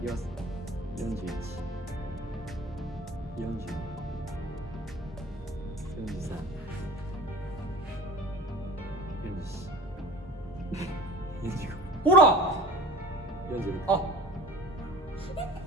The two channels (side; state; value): both; normal; correlation 0.41